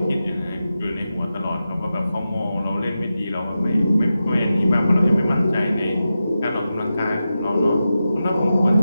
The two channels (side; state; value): both; inverted; correlation -0.91